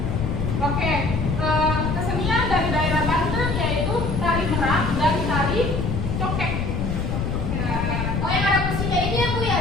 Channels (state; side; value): noise; left; rumble, 1 dB below the sound